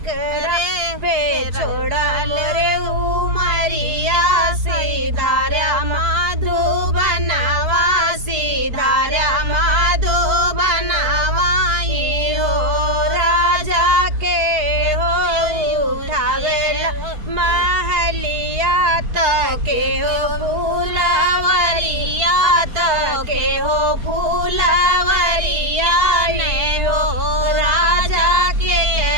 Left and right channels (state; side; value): late; left; 4.5 ms